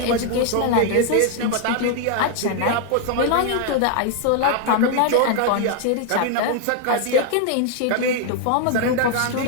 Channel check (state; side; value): different; both; correlation 0.00